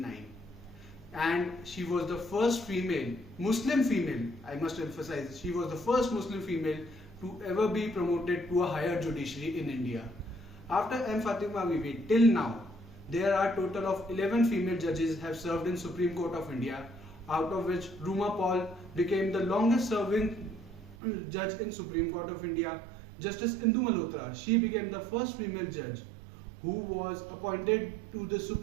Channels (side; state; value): left; drops out; at 21.0 s